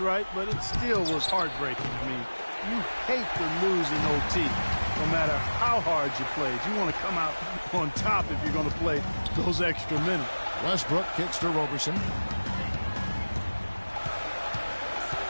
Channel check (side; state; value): both; inverted; correlation -1.00